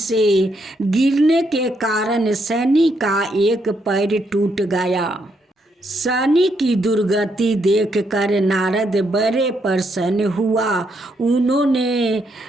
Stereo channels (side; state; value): both; normal; correlation 0.76